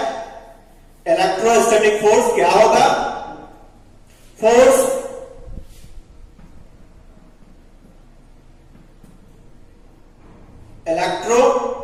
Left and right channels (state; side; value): identical; both; correlation 1.00